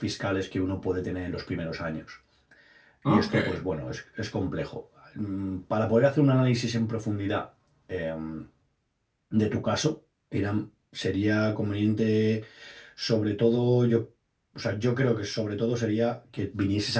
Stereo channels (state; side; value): identical; both; correlation 1.00